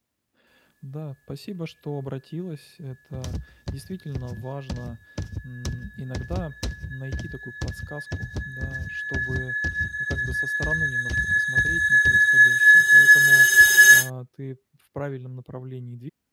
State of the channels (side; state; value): both; identical; correlation 1.00